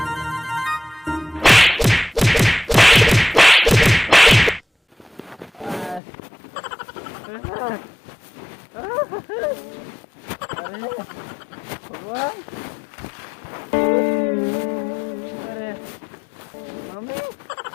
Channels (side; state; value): right; drops out; at 6.0 s